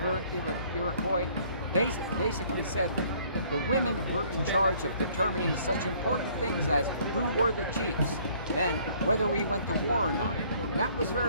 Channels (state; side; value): inverted; both; correlation -0.59